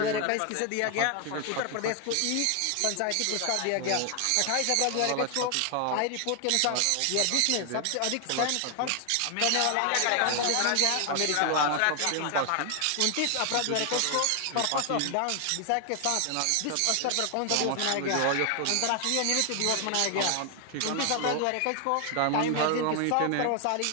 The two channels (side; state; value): both; different; correlation 0.00